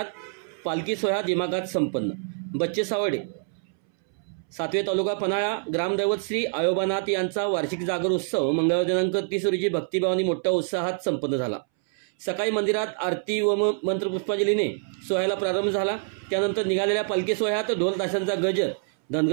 पालखी सोहळा दिमागात संपन्न। बच्चे सावडे। सातवे तालुका पन्हाळा ग्रामदैवत श्री आयोबानाथ यांचा वार्षिक जागर उत्सव मंगळवार दिनांक 30 रोजी भक्तिभावाने मोठ्या उत्साहात संपन्न झाला। सकाळी मंदिरात आरती व मंत्रपुष्पांजलीने सोहळ्याला प्रारंभ झाला। त्यानंतर निघालेल्या पालखी सोहळ्यात ढोल ताशांचा गजर,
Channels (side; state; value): left; silent; 61 dB below the other